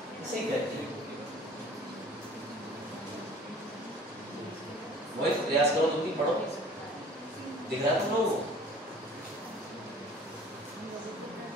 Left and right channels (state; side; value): normal; both; correlation 0.48